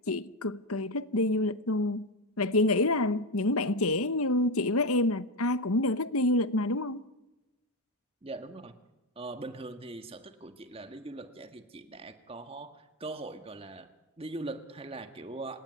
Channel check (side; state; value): both; normal; correlation 0.12